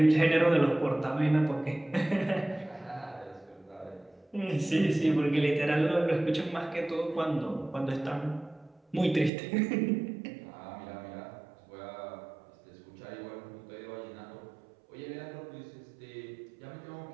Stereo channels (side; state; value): left; drops out; at 9.3 s